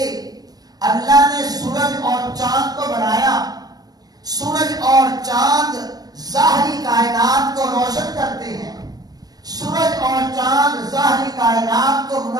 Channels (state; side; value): late; left; 0.19 ms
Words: اللہ نے سورج اور چاند کو بنایا، سورج اور چاند ظاہری کائنات کو روشن کرتے ہیں، ظاہری کائنات کو